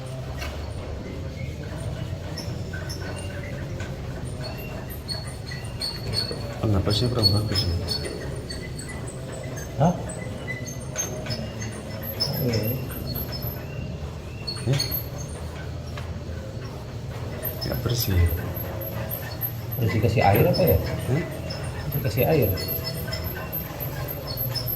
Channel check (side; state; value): both; identical; correlation 1.00